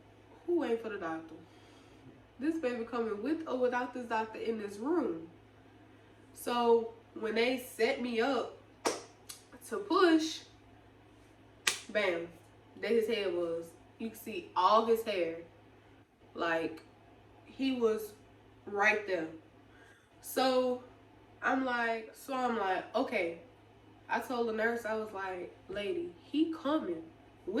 wait for the doctor? This baby coming with or without this doctor in this room. So when they set me up to push, bam, there his head was. You can see all his hair. Like, he was right there. So I'm like, okay. I told the nurse, I was like, lady, he coming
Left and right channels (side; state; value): both; identical; correlation 1.00